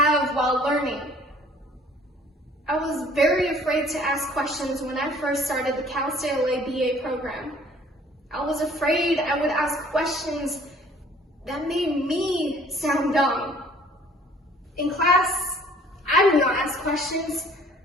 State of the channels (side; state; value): both; normal; correlation 0.54